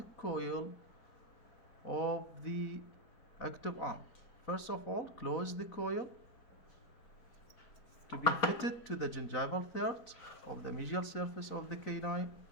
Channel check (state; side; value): late; right; 4.1 ms